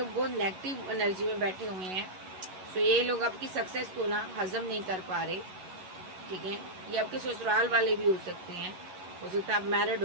बहुत नेगेटिव एनर्जी में बैठे हुए हैं। सो ये लोग आपकी सक्सेस को ना हजम नहीं कर पा रहे, ठीक है। ये आपके ससुराल वाले भी हो सकते हैं, हो सकता है आप मैरिड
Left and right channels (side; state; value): left; late; 11 ms